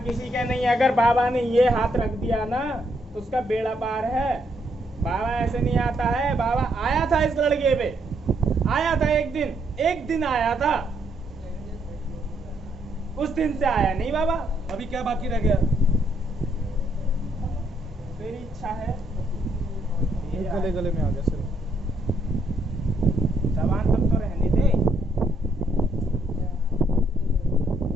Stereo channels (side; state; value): both; normal; correlation 0.73